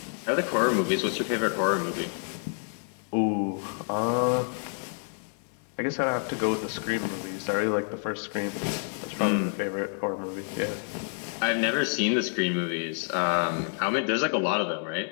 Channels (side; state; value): right; silent; 59 dB below the other